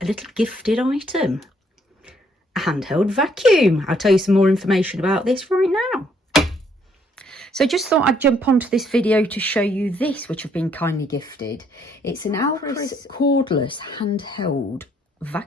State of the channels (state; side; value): normal; both; correlation 0.68